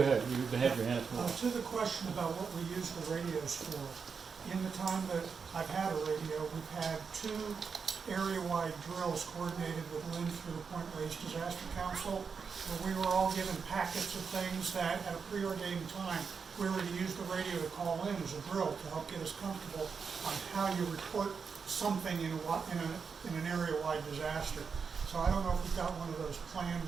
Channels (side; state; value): left; quieter; 5.7 dB